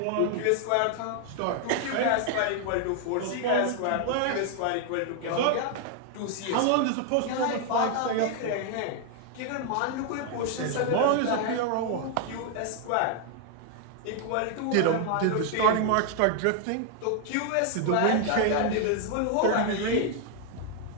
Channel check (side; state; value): both; different; correlation 0.00